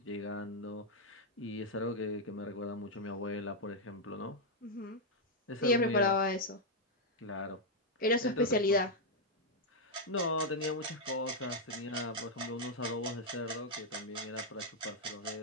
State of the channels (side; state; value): both; normal; correlation -0.01